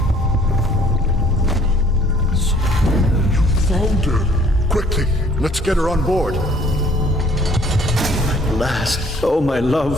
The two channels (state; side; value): normal; both; correlation 0.58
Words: Noted. Quickly, let's get her on board. At last. Oh, my